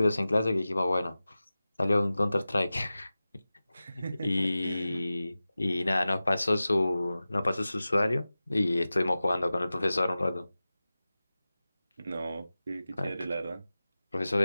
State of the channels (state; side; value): inverted; both; correlation -0.96